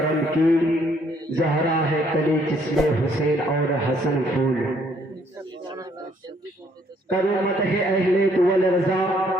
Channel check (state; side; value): normal; both; correlation 0.66